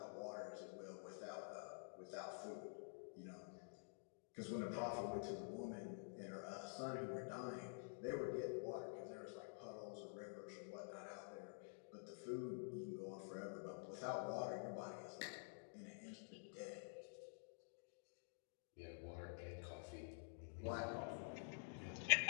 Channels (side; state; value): right; silent; digital silence